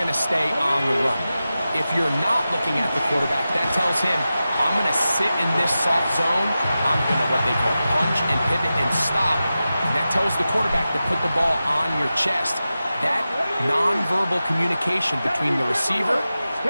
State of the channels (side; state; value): both; inverted; correlation -0.93